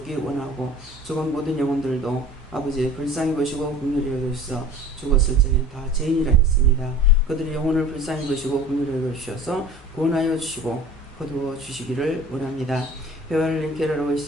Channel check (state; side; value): normal; both; correlation 0.42